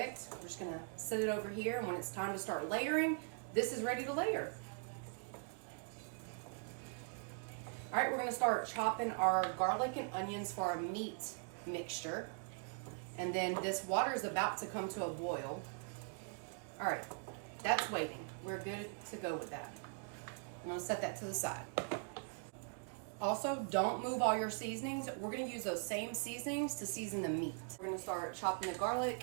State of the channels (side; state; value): left; silent; 50 dB below the other